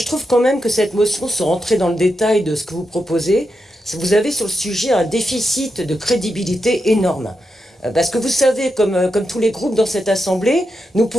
trouve quand même que cette motion, sans rentrer dans le détail de ce que vous proposez, vous avez sur le sujet un déficit de crédibilité énorme. Parce que vous savez, comme tous les groupes dans cette assemblée, nous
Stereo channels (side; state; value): both; normal; correlation 0.87